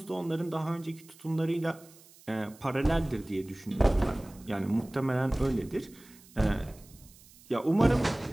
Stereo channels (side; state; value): right; noise; hiss, 24 dB below the sound